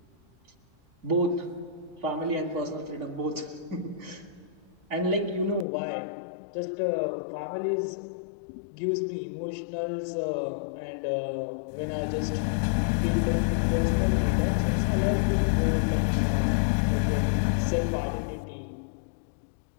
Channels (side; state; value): right; drops out; at 5.7 s